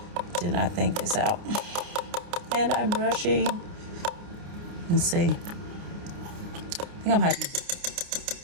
Did not think this out. And I'm rushing. Let's see. I think I'm going to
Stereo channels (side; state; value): left; late; 29 ms